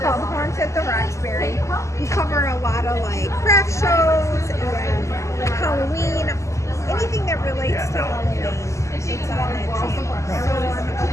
Horns at the Roxbury. We cover a lot of like craft shows and Halloween, anything that relates to Halloween. It's on that channel. So a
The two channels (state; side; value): late; right; 0.14 ms